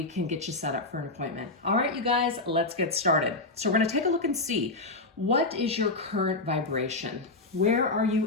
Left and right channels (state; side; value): quieter; right; 3.1 dB